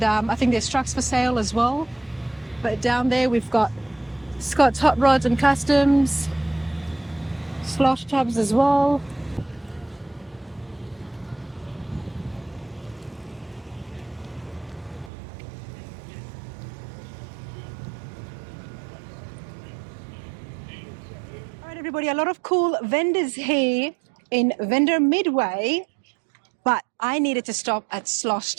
I think there's trucks for sale as well. But down there we've got Scott's Hot Rods and Customs, Slosh Tubz as well. All right, everybody, a lot of cool vendors here in Vendor Midway, but I needed to stop at Slosh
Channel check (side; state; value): left; drops out; at 15.1 s